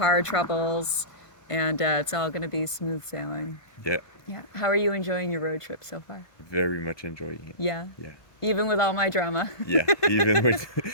troubles, and it's all going to be smooth sailing. Yeah. Yeah. How are you enjoying your road trip so far? Very much enjoying it. Yeah. Yeah. Even with all my drama. Yeah. Even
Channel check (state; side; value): late; right; 1.5 ms